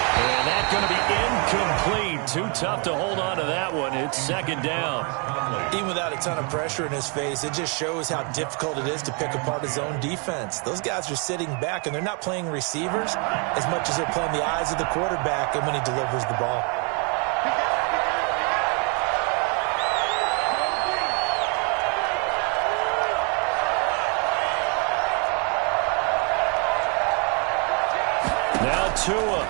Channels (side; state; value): left; quieter; 35.4 dB